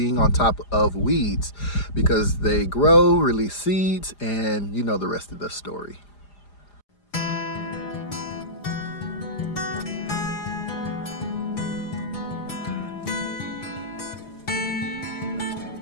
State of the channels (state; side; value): late; right; 4.9 ms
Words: on top of weeds because they grow, release seeds, and you know the rest of the story.